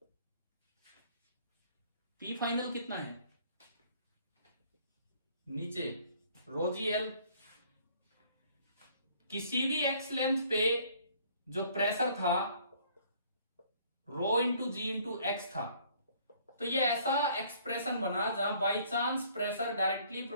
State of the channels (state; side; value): inverted; both; correlation -0.59